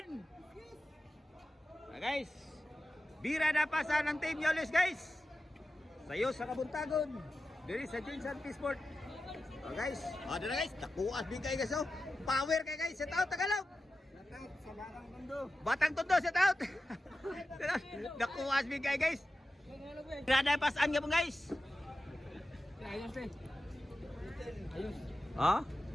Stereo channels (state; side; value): normal; both; correlation 0.92